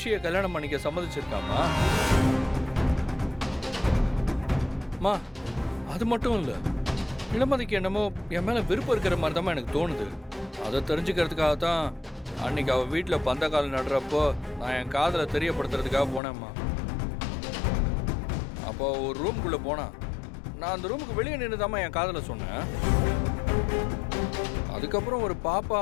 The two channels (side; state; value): right; drops out; at 16.2 s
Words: கல்யாணம் பண்ணிக்க சம்மதிச்சிருக்காமா. மா அது மட்டும் இல்லை, இளமதிக்கு என்னமோ என் மேலே விருப்பம் இருக்கிற மாதிரி தான் எனக்கு தோணுது. அதை தெரிஞ்சுக்கிறதுக்காக தான் அன்னைக்கு அவள் வீட்டில் பந்தக்கால் நடுறப்போ நான் என் காதலை தெரியப்படுத்துறதுக்காக போனேம்மா. அப்போ ஒரு ரூம்குள்ளே போனான். நான் அந்த ரூமுக்கு வெளியே நின்று தாம்மா என் காதலை சொன்னேன். அதுக்கப்புறம் ஒரு பாப்பா